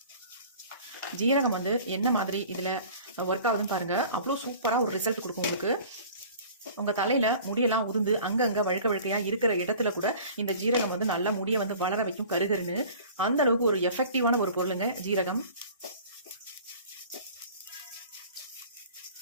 ஜீரகம் வந்து என்ன மாதிரி இதில் ஒர்க் ஆகுதுன்னு பாருங்கள். அவ்வளோ சூப்பராக ஒரு ரிசல்ட் கொடுக்கும் உங்களுக்கு. உங்கள் தலையில் முடியெல்லாம் உதிர்ந்து அங்கங்கே வழுக்கையாக இருக்கிற இடத்துல கூட இந்த ஜீரகம் வந்து நல்லா முடியை வந்து வளர வைக்கும் கருகருன்னு. அந்த அளவுக்கு ஒரு எஃபெக்டிவான ஒரு பொருளுங்க ஜீரகம்.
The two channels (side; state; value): both; inverted; correlation -0.45